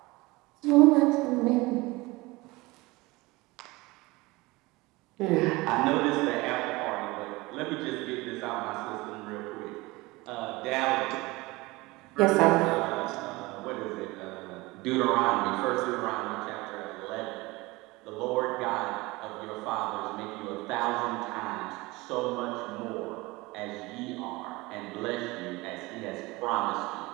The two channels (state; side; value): quieter; left; 22.2 dB